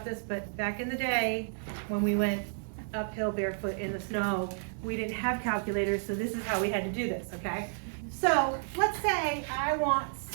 this, but back in the day, when we went uphill barefoot in the snow, we didn't have calculators, so this is how we had to do this, okay? So let's say I want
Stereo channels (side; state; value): left; silent; digital silence